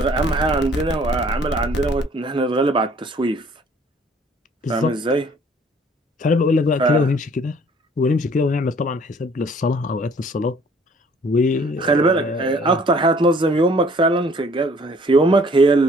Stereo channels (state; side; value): normal; both; correlation 0.57